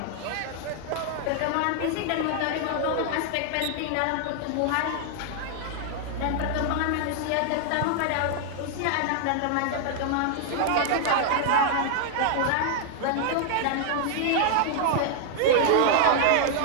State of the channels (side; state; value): both; different; correlation 0.00